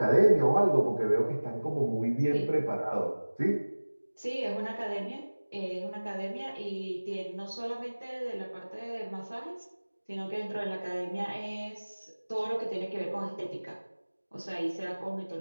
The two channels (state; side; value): inverted; both; correlation -1.00